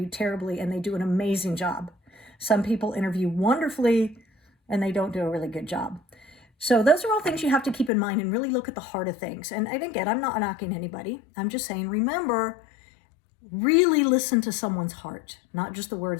terribly and they do an amazing job. Some people interview wonderfully and they don't do a really good job. So those are all things you have to keep in mind and really look at the heart of things. And again, I'm not knocking anybody. I'm just saying, remember, really listen to someone's heart, not just the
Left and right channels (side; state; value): right; drops out; at 7.9 s